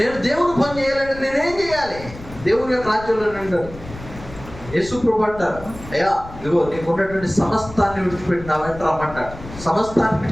దేవుని పని చేయాలంటే నేనేం చేయాలి? దేవుని యొక్క రాజ్యంలో అంటారు. యేసు ప్రభు అంటారు, అయ్యా ఇదిగో నీకు ఉన్నటువంటి సమస్తాన్ని విడిచిపెట్టి నా వెంట రమ్మంటాడు. సమస్తాన్ని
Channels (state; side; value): noise; left; rumble, 15 dB below the sound